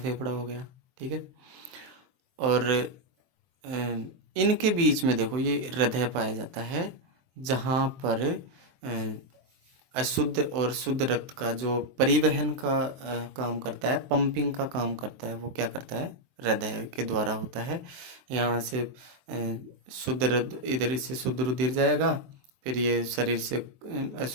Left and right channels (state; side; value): late; left; 23 ms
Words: हो गया, ठीक है। और इनके बीच में देखो ये हृदय पाया जाता है, जहाँ पर अशुद्ध और शुद्ध रक्त का जो परिवहन का काम करता है, पंपिंग का काम करता है, वो क्या करता है? हृदय के द्वारा होता है। यहाँ से शुद्ध इधर से शुद्ध रुधिर जाएगा, फिर ये शरीर से